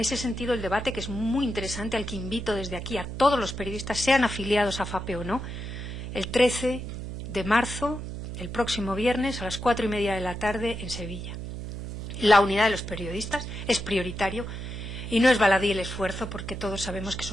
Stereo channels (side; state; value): right; noise; hum, 7 dB below the sound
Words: sentido, el debate, que es muy interesante, al que invito desde aquí a todos los periodistas, sean afiliados a FAPE o no, el 13 de marzo, el próximo viernes, a las 4:30 de la tarde, en Sevilla. La unidad de los periodistas es prioritario. Y no es baladí el esfuerzo, porque todos sabemos que